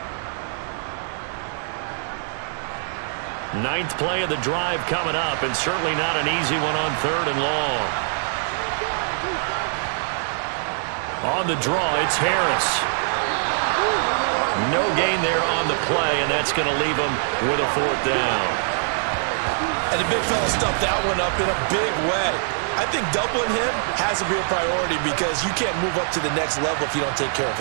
9th play of the drive coming up, and certainly not an easy one on 3rd and long. On the draw, it's Harris. No gain there on the play, and that's going to leave him with a 4th down. And the big fella stuffed that one up in a big way. I think doubling him has to be a priority because you can't move up to the next level if you don't take care of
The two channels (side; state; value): left; silent; 60 dB below the other